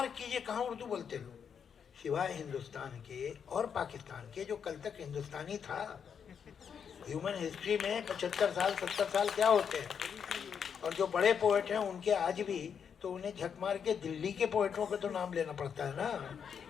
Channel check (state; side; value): quieter; right; 7.2 dB